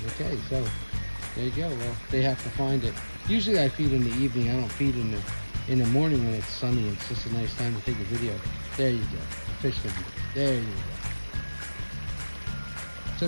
Okay, so there you go. Well, they have to find it. Usually I feed in the evening. I don't feed in the morning when it's sunny. It's just a nice time to take a video. There you go. Fish food. There you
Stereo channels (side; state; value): both; inverted; correlation -1.00